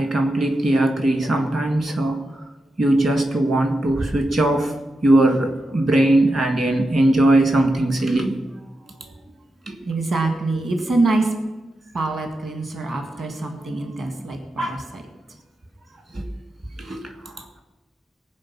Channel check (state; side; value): normal; both; correlation 0.88